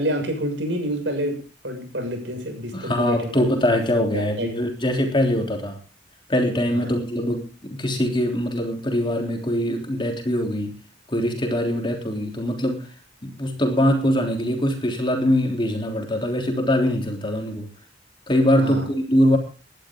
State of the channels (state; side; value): normal; both; correlation 0.67